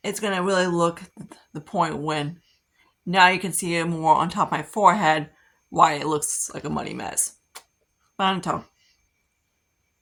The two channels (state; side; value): identical; both; correlation 1.00